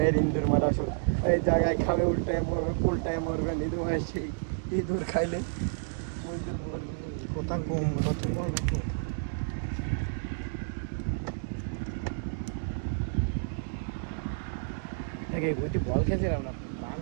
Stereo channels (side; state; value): left; silent; digital silence